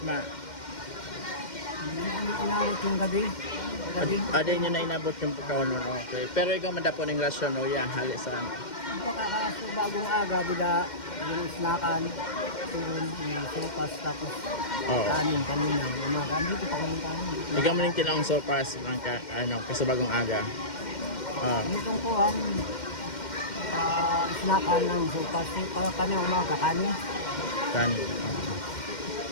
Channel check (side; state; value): right; late; 2.1 ms